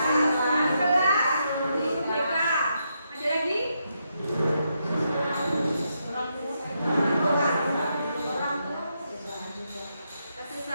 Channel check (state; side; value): inverted; both; correlation -0.81